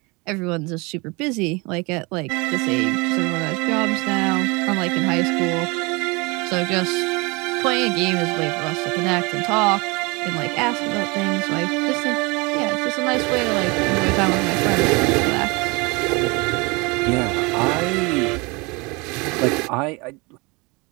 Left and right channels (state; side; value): quieter; left; 27.0 dB